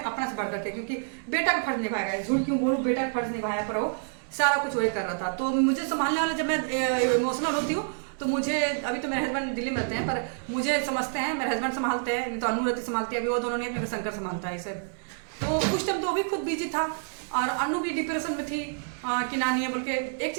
अपना से बढ़ करके, क्योंकि बेटा का फर्ज निभाएगा। झूठ क्यों बोलूँ, बेटा का फर्ज निभाया, पर वो सारा कुछ वही कर रहा था। तो मुझे संभालने वाले जब मैं इमोशनल होती हूँ तो मुझे, अभी तो मेरे हस्बैंड दिल्ली में रहते हैं, पर मुझे समझते हैं, मेरे हस्बैंड संभालते हैं, नहीं तो अनु रति संभालती है। अभी वो दोनों नहीं, मेरे शंकर संभालता है इसे। तो उस टाइम तो वो भी खुद बिजी था, और अनु भी डिप्रेशन में थी कि नानी है बोल के। एक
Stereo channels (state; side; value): silent; left; digital silence